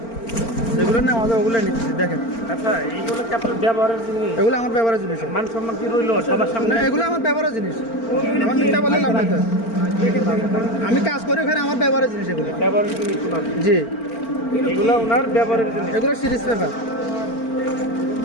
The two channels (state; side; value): late; right; 4.4 ms